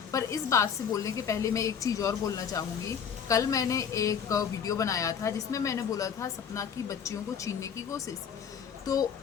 पर इस बात से बोलने के पहले मैं एक चीज़ और बोलना चाहूँगी। कल मैंने एक वीडियो बनाया था जिसमें मैंने बोला था सपना की बच्चियों को छीनने की कोशिश। तो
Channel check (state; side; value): quieter; right; 7.4 dB